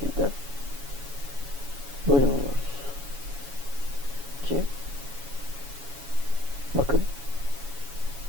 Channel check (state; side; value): late; left; 7.1 ms